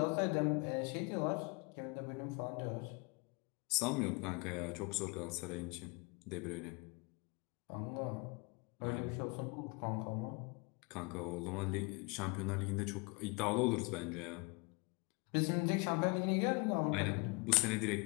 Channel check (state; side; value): quieter; right; 29.1 dB